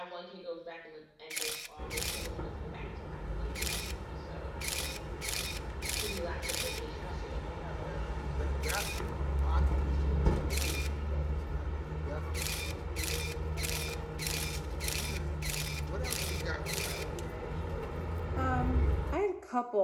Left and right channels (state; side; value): identical; both; correlation 1.00